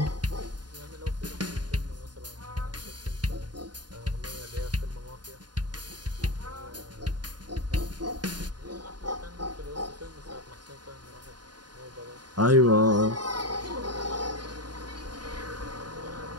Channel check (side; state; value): left; late; 0.70 ms